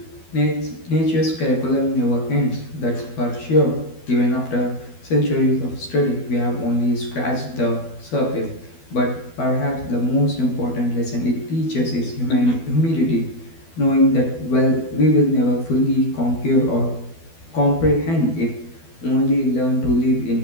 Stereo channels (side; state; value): right; late; 12 ms